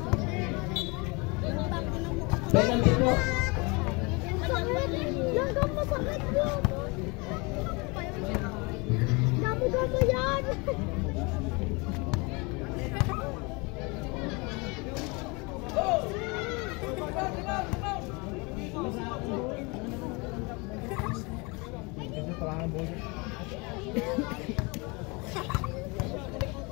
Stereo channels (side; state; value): right; quieter; 28.1 dB